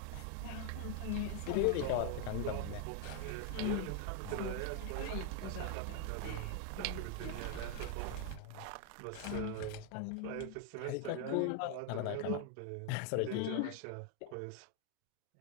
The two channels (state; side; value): different; both; correlation 0.00